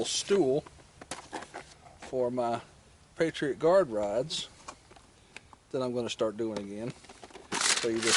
stool for my Patriot Guard rides that I'm going to start doing again. So you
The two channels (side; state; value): both; identical; correlation 1.00